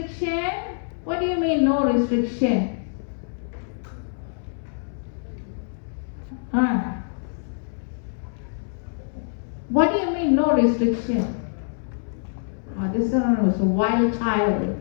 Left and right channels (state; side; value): silent; right; 62 dB below the other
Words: What do you mean no restriction? What do you mean no restriction? This one was a wild